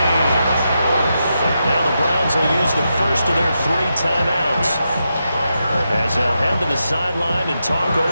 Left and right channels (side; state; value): both; inverted; correlation -0.86